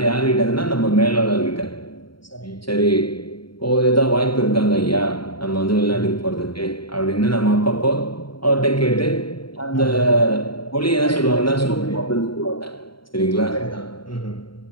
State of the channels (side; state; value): right; late; 0.73 ms